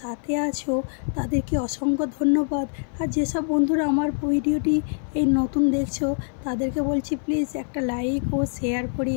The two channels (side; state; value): right; silent; 56 dB below the other